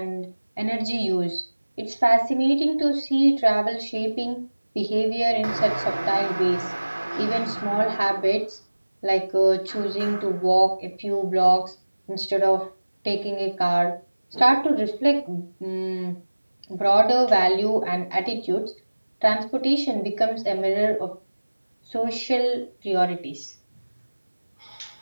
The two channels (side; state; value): both; inverted; correlation -1.00